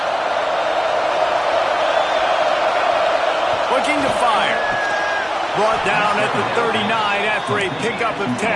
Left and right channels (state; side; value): identical; both; correlation 1.00